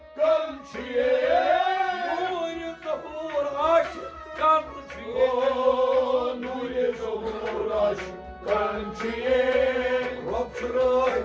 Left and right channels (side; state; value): both; identical; correlation 1.00